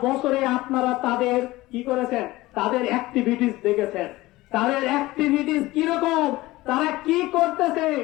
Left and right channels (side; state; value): right; quieter; 18.8 dB